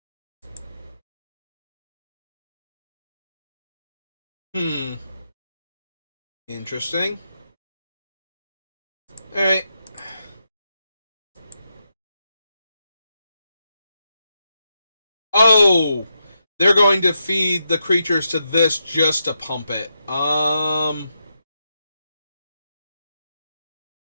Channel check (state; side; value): inverted; both; correlation -0.85